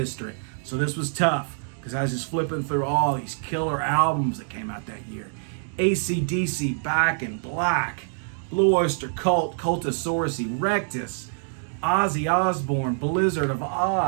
So this was tough because I was just flipping through all these killer albums that came out that year. AC/DC, Back in Black, Blue Oyster Cult, Cultosaurus Erectus, Ozzy Osbourne, Blizzard of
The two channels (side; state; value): left; silent; 61 dB below the other